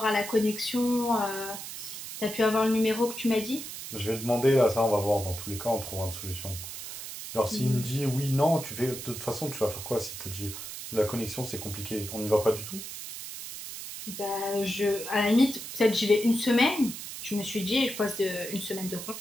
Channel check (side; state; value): right; noise; hiss, 9 dB below the sound